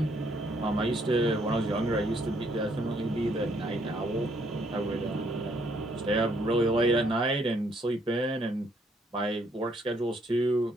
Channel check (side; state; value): both; normal; correlation 0.69